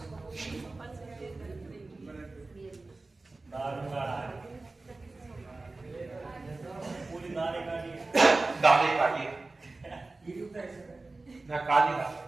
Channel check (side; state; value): left; quieter; 3.3 dB